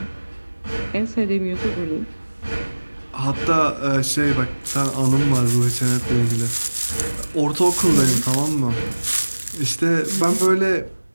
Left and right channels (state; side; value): inverted; both; correlation -1.00